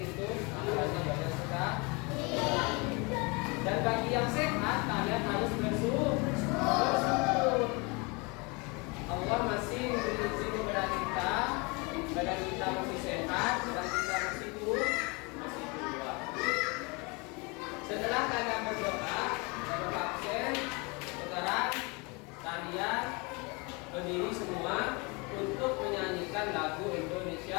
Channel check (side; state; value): right; quieter; 28.8 dB